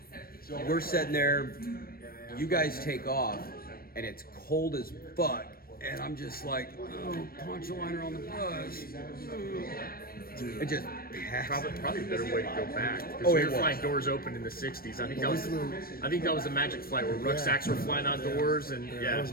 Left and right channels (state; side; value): late; right; 0.43 ms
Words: we're sitting there, you guys take off, and it's cold as fuck. And I'm just like, oh, poncho liner on the bus. It just probably a better way to go back. Oh, we were flying doors open in the '60s. I think that was a magic flight where rucksacks were flying outdoors, and that was